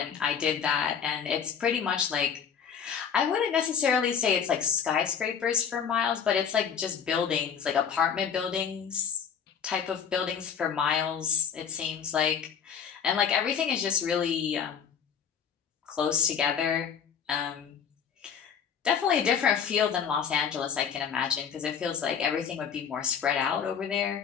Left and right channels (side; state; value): right; quieter; 7.4 dB